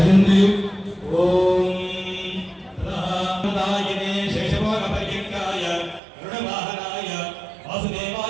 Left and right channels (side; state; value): left; drops out; at 6.0 s